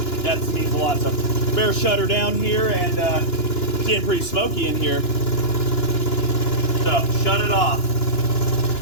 that means a lot. So better shut her down here, and it's getting pretty smoky in here. So shut it off.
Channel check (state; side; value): late; right; 2.9 ms